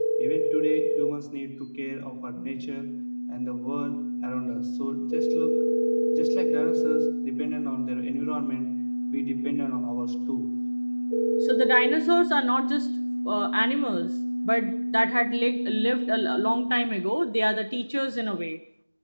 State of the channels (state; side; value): inverted; both; correlation -1.00